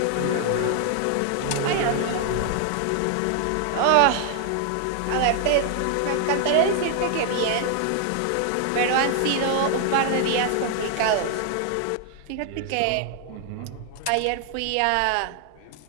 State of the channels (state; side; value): different; both; correlation 0.00